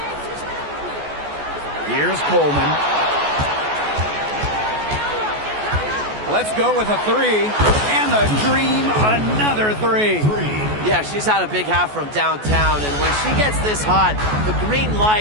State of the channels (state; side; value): late; left; 14 ms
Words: Here's Coleman. Let's go with a three. And the Dream, another three. Yeah, she's had a big half from downtown, and when she gets this hot, the green